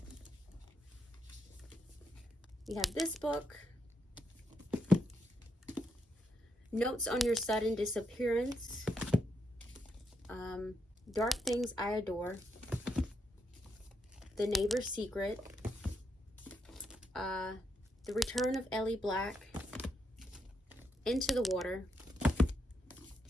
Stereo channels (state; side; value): normal; both; correlation 0.81